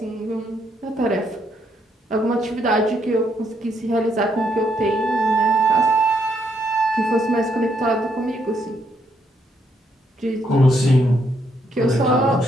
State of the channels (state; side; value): normal; both; correlation 0.74